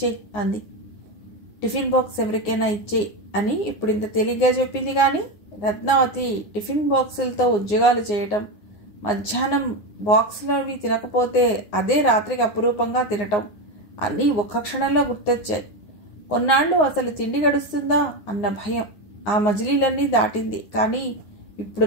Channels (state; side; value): late; right; 9.7 ms